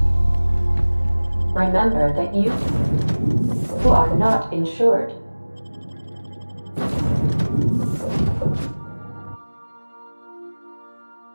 Remember that you are not insured.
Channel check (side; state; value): both; inverted; correlation -1.00